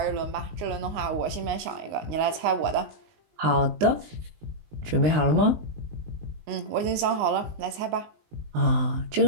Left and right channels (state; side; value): late; left; 19 ms